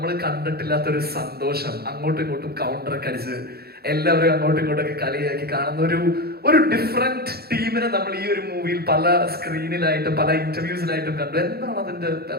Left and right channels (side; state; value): left; late; 0.46 ms